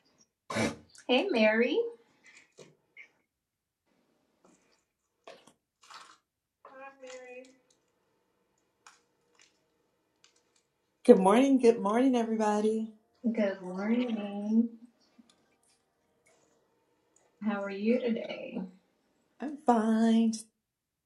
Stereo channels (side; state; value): both; identical; correlation 1.00